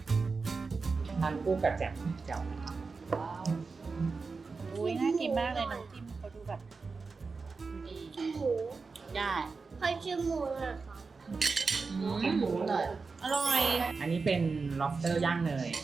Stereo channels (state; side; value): quieter; left; 4.5 dB